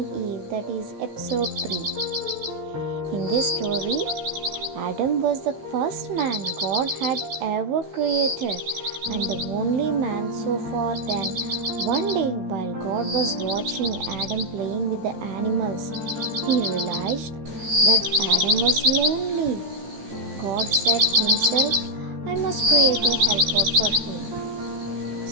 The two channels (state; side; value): late; left; 15 ms